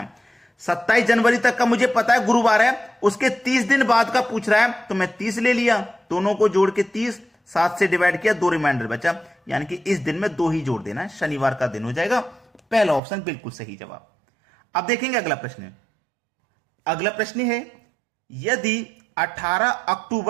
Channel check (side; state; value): left; drops out; at 13.0 s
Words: 27 जनवरी तक का मुझे पता है गुरुवार है, उसके 30 दिन बाद का पूछ रहा है, तो मैं 30 ले लिया, दोनों को जोड़ के 30, 7 से डिवाइड किया, 2 रिमाइंडर बचा, यानी कि इस दिन में 2 ही जोड़ देना है, शनिवार का दिन हो जाएगा। पहला ऑप्शन बिल्कुल सही जवाब। अब देखेंगे अगला प्रश्न। अगला प्रश्न है, यदि 18